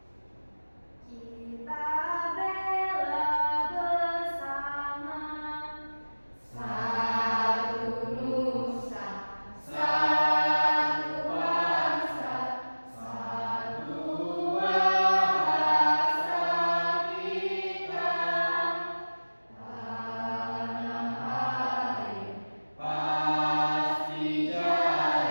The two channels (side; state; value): both; inverted; correlation -1.00